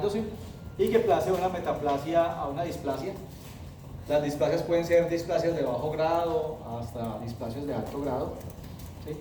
y que pase una metaplasia a una displasia. Las displasias pueden ser displasias de bajo grado hasta displasias de alto grado, ¿sí?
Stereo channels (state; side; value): identical; both; correlation 1.00